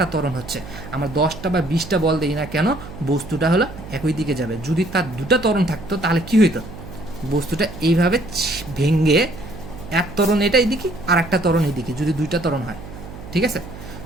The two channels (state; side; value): noise; right; hum, 14 dB below the sound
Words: ত্বরণ হচ্ছে। আমরা 10টা বা 20টা বল দিই না কেন, বস্তুটা হলো একই দিকে যাবে। যদি তার দুটা ত্বরণ থাকতো তাহলে কি হইতো? বস্তুটা এইভাবে ভেঙে এক ত্বরণ এটা এদিকে আর একটা ত্বরণ এদিকে, যদি দুইটা ত্বরণ হয়, ঠিক আছে?